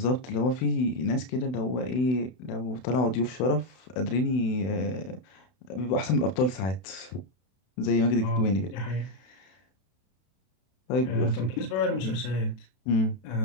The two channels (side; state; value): right; late; 32 ms